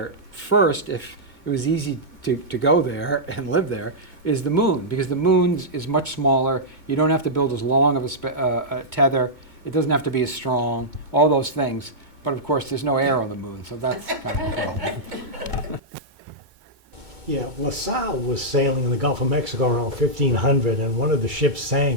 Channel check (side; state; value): left; late; 2.1 ms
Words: first, if it was easy to go there and live there, is the moon, because the moon is much smaller. You don't have to build as long of a tether. It doesn't have to be as strong. All those things. But of course, there's no air on the moon, so that's kind of a problem. Yeah, LaSalle was sailing in the Gulf of Mexico around 1500, and one of the ships